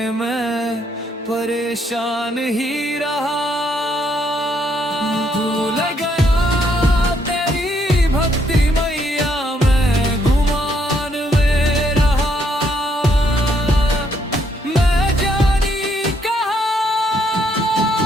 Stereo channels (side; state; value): both; normal; correlation 0.72